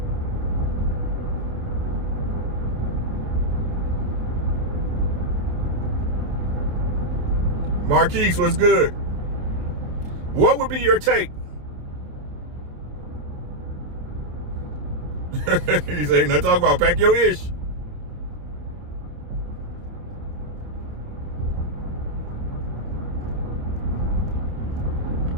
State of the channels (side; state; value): left; late; 27 ms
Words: Marquise, what's good? What would be your take? He said, no, talk about pack your ish.